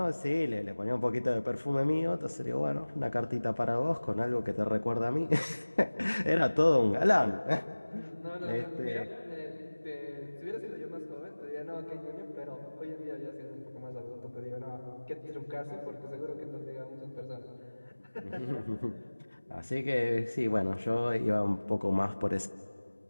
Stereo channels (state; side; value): inverted; both; correlation -1.00